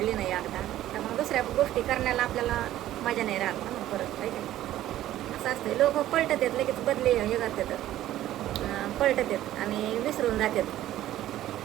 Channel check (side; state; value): left; quieter; 13.6 dB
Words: नाही एकदा, तर मग दुसऱ्या गोष्टी करण्याला आपल्याला मजा नाही राहत ना मग परत. काही असं असतं. लोक पलटत आहेत लगेच, बदले हे करतात, पलटत आहेत आणि विसरून जातात.